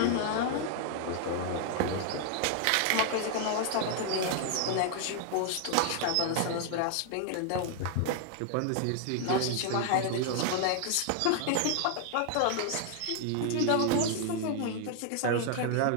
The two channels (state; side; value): different; both; correlation 0.00